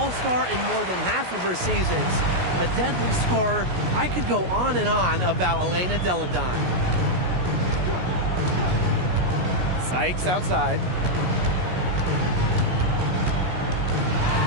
in more than half of her seasons. A deadly scorer. I could go on and on about Elena Delle Donne. Sykes outside.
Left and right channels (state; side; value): late; left; 16 ms